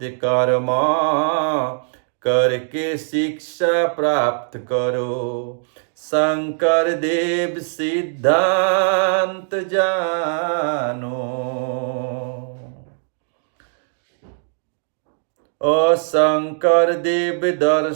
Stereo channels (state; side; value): silent; left; digital silence